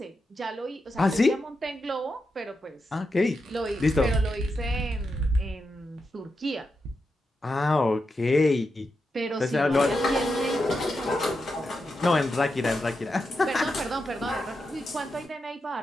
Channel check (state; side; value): normal; both; correlation 0.87